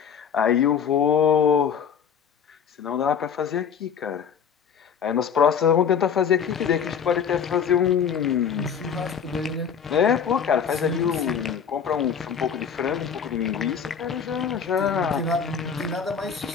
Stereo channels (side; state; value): right; quieter; 7.3 dB